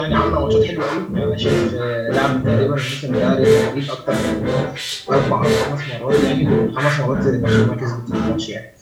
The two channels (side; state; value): both; identical; correlation 1.00